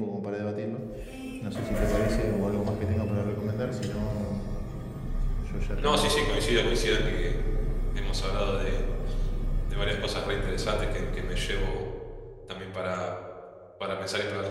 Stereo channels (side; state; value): both; identical; correlation 1.00